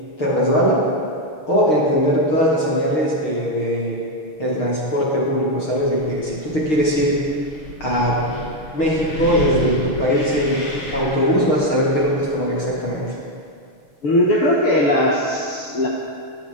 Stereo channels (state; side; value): late; right; 6.5 ms